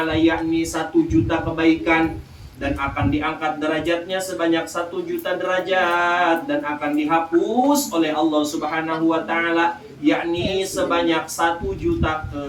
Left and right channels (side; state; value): both; identical; correlation 1.00